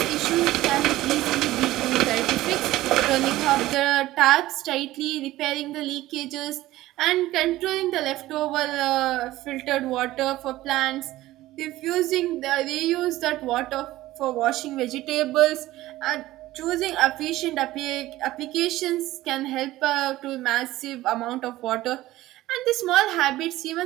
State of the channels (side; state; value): left; quieter; 16.4 dB